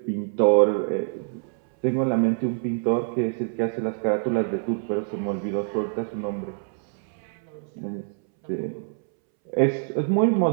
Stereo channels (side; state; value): left; silent; 62 dB below the other